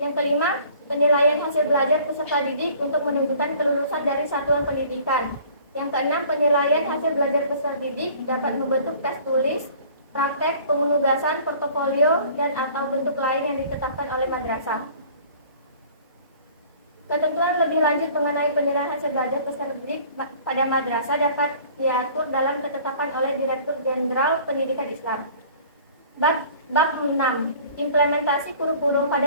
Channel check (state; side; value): inverted; both; correlation -0.50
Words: kelima, penilaian hasil belajar peserta didik untuk menunjukkan kelulusan dari satuan pendidikan. Yang keenam, penilaian hasil belajar peserta didik dapat membentuk tes tulis, praktek, penugasan, portofolio, dan atau bentuk lain yang ditetapkan oleh madrasah. Ketentuan lebih lanjut mengenai penilaian hasil belajar peserta didik pada madrasah dapat diatur dalam ketetapan oleh Direktur Jenderal Pendidikan Islam. Bab 6. Implementasi kurikulum